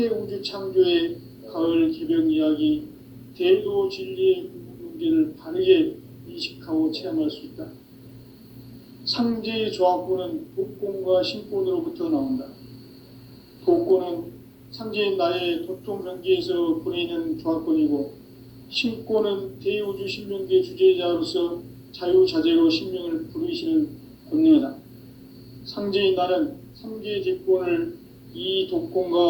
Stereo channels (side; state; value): both; identical; correlation 1.00